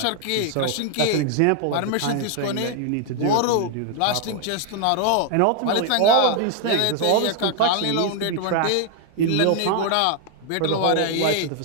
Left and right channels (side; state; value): both; different; correlation 0.00